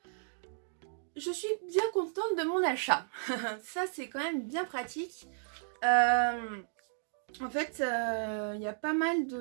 je suis bien contente de mon achat. Ça, c'est quand même bien pratique. En fait, il y a pas mal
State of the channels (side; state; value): left; silent; digital silence